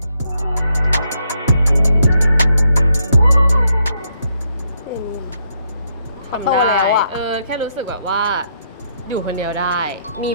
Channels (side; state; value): both; inverted; correlation -0.76